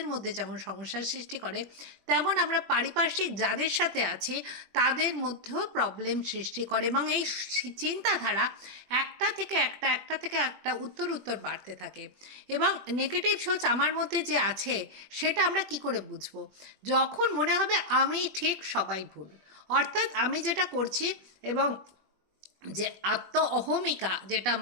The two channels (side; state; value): left; late; 21 ms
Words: মধ্যে যেমন সমস্যার সৃষ্টি করে, তেমন আমরা পারিপার্শ্বিক যাদের সাথে আছি তাদের মধ্যেও প্রবলেম সৃষ্টি করে। এবং এই চিন্তাধারা একটা থেকে একটা উত্তর উত্তর বাড়তে থাকে। এবং নেগেটিভ সোচ আমার মধ্যে যে আছে সেটা আমরা কি করে বুঝবো? যখন মনে হবে আমি ঠিক সবাই ভুল, অর্থাৎ আমি যেটা করছি এবং যে আত্ম অহমিকা যেটা